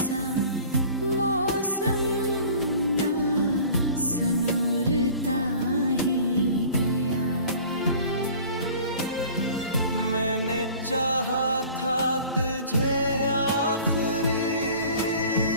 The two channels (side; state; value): both; inverted; correlation -0.46